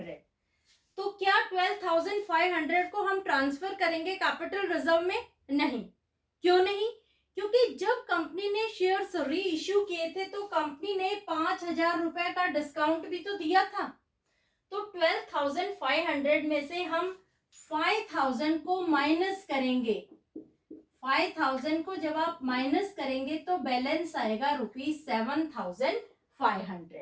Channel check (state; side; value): identical; both; correlation 1.00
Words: तो क्या 12,500 को हम ट्रांसफर करेंगे कैपिटल रिजर्व में? नहीं। क्यों नहीं? क्योंकि जब कंपनी ने शेयर्स री इश्यू किए थे तो कंपनी ने 5,000 रुपए का डिस्काउंट भी तो दिया था। तो 12,500 में से हम 5,000 को माइनस करेंगे। 5,000 को जब आप माइनस करेंगे तो बैलेंस आएगा